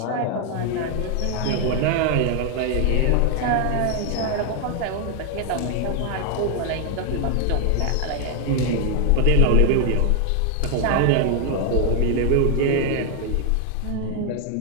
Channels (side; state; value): both; different; correlation 0.00